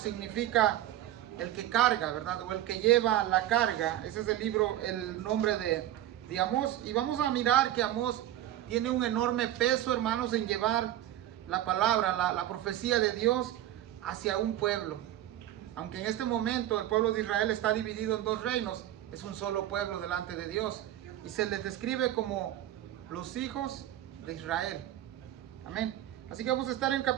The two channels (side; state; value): left; quieter; 12.9 dB